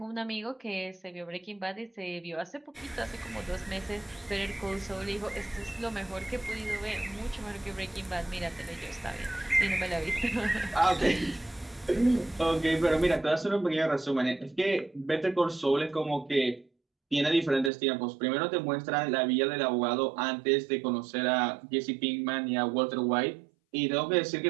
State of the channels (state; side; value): drops out; left; at 17.7 s